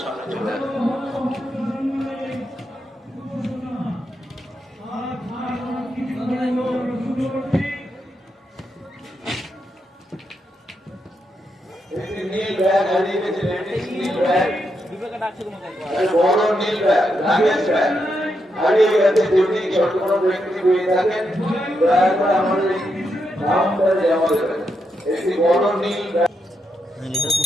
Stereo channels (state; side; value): normal; both; correlation 0.82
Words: সামনে চলে আসবেন। নীল ব্যাগ হারিয়ে গেছে, লেডিস নীল ব্যাগ, বড় নীল ব্যাগ, লাগেজ ব্যাগ হারিয়ে গেছে। যদি ছোট কোনো ব্যক্তি পেয়ে থাকেন দয়া করে আমাদের কাউন্টারে জমা দেবেন। একটি বড় নীল ব্যাগ।